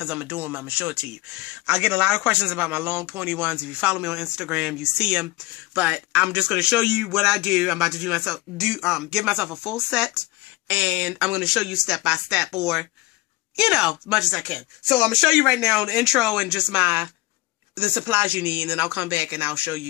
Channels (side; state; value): right; quieter; 21.2 dB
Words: I'm going to do them. I'm going to show it to you. I get a lot of questions about my long pointy ones. If you follow me on Instagram, you see them. But I'm just going to show you what I do. I'm about to give myself a full set, and I'm going to show you step by step, or, as much as I can. So I'm going to show you right now the intro and just the supplies you need, and then I'll come back and I'll show